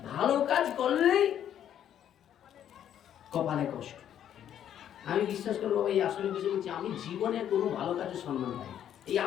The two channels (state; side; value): quieter; right; 10.1 dB